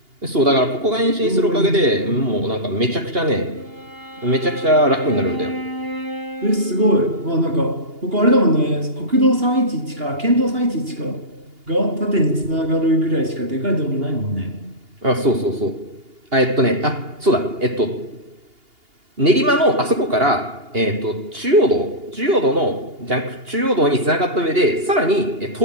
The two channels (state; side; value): late; left; 2.8 ms